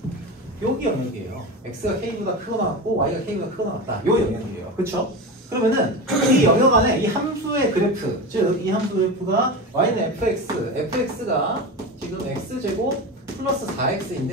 여기 영역이에요. X가 K보다 크거나 같고 Y가 K보다 크거나 같다. 요 영역이에요. 그렇죠? 그러면은 이 영역 안에 이 함수의 그래프, 즉 이 함수 그래프가 y는 fx가 지금 x제곱 플러스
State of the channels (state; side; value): normal; both; correlation 0.24